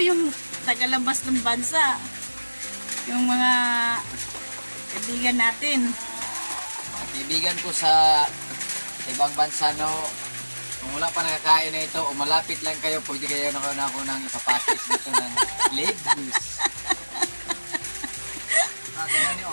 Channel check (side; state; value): both; inverted; correlation -1.00